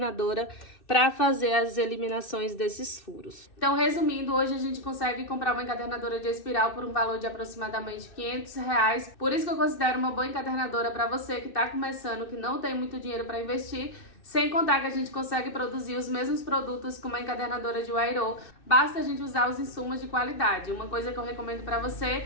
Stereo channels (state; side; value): late; right; 2.6 ms